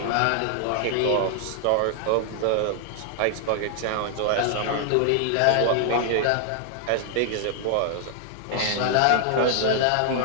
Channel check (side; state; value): both; different; correlation 0.00